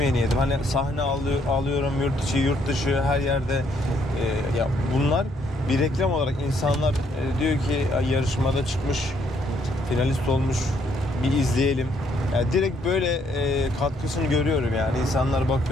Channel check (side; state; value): both; normal; correlation 0.69